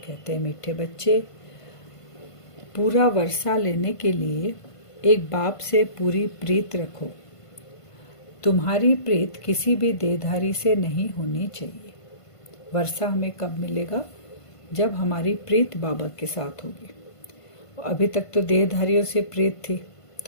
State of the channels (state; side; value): late; right; 1.5 ms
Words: हैं, मीठे बच्चे, पूरा वर्षा लेने के लिए एक बाप से पूरी प्रीत रखो। तुम्हारी प्रीत किसी भी देहधारी से नहीं होनी चाहिए। वर्षा हमें कब मिलेगा? जब हमारी प्रीत बाबा के साथ होगी। अभी तक तो देहधारियों से प्रीत थी,